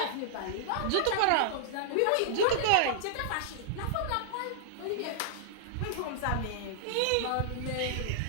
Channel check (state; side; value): different; both; correlation -0.01